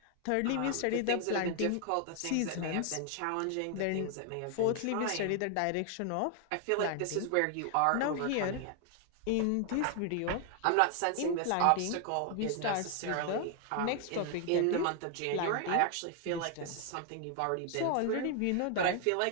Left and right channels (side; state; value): both; different; correlation 0.00